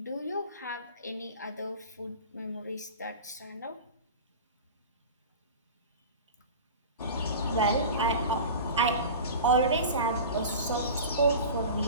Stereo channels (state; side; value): inverted; both; correlation -0.34